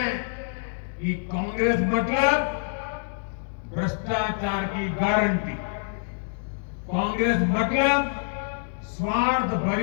कि कांग्रेस मतलब भ्रष्टाचार की गारंटी, कांग्रेस मतलब स्वार्थ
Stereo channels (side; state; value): right; silent; digital silence